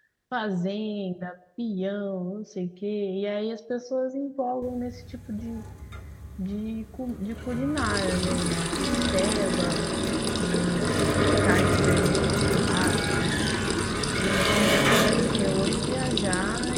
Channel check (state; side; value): identical; both; correlation 1.00